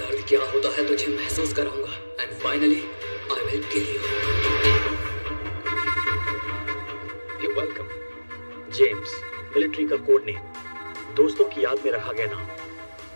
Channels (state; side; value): inverted; both; correlation -1.00